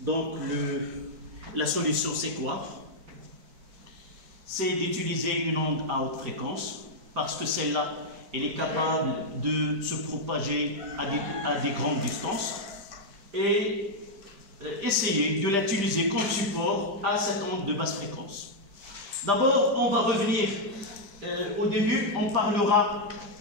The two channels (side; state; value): left; late; 5.0 ms